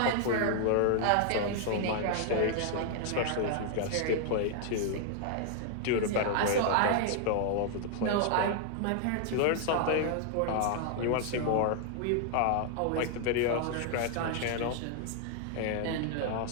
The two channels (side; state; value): both; different; correlation 0.00